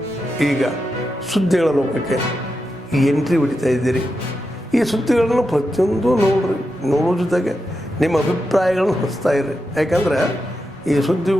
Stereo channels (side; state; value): both; normal; correlation 0.88